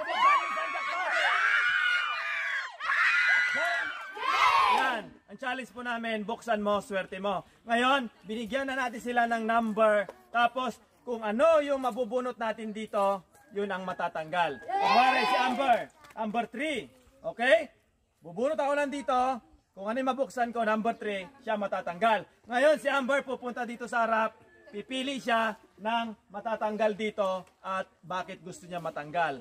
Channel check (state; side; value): identical; both; correlation 1.00